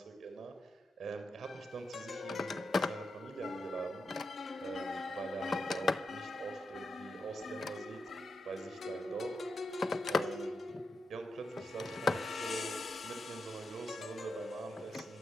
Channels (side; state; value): both; normal; correlation 0.86